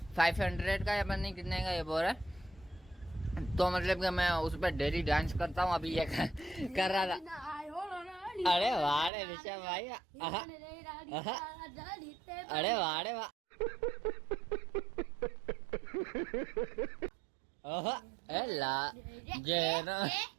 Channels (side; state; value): left; drops out; at 9.1 s